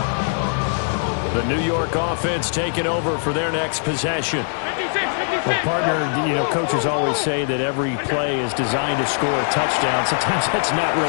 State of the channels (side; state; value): right; silent; digital silence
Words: The New York offense taking over for their next possession. Well, partner, you know, coaches always say that every play is designed to score a touchdown. Sometimes that's not